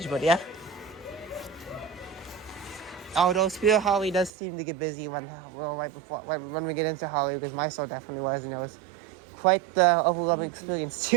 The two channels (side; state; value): left; drops out; at 4.3 s